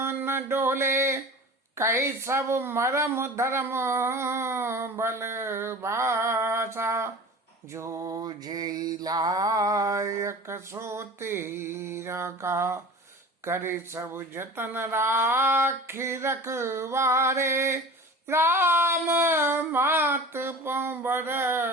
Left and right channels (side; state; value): both; normal; correlation 0.38